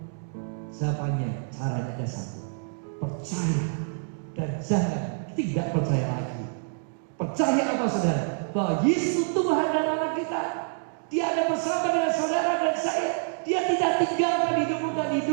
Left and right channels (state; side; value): silent; left; digital silence